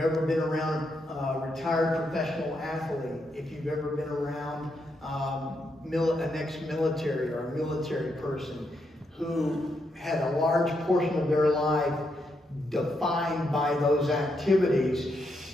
been around a retired professional athlete, if you've ever been around an ex-military or a military person who had a large portion of their life defined by those activities,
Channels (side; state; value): both; normal; correlation 0.80